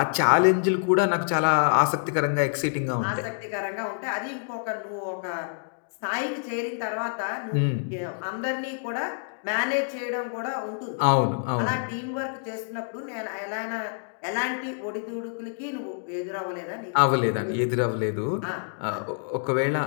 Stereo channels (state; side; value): silent; right; digital silence